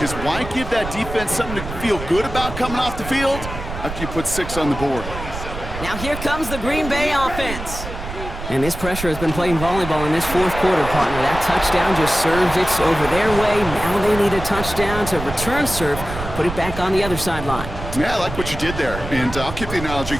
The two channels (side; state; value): right; noise; rumble, 9 dB below the sound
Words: is why give that defense something to feel good about coming off the field after you put 6 on the board? Now here comes the Green Bay offense. And this pressure has been playing volleyball in this 4th quarter, partner. That touchdown just serves it over their way. Now they need a touchdown to return serve, put it back on the other sideline. Yeah, I like what you did there. And I'll keep the analogy